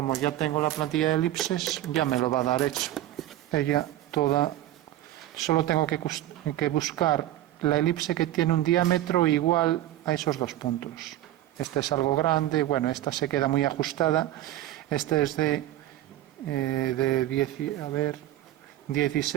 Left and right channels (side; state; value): left; quieter; 13.8 dB